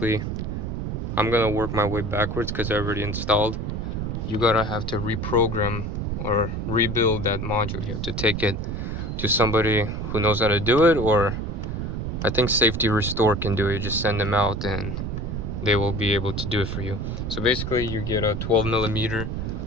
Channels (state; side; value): noise; right; rumble, 3 dB below the sound